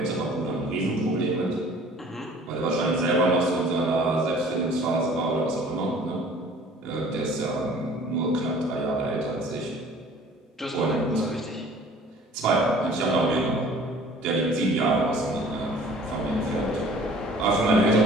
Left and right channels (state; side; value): normal; both; correlation 0.50